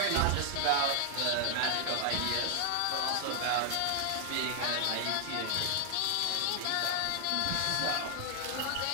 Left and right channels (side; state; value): both; different; correlation 0.00